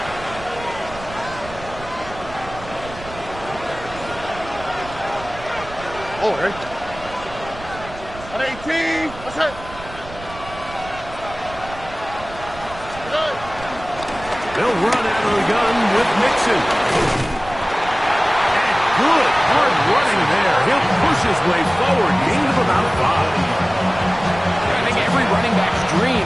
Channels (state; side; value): noise; right; rumble, 15 dB below the sound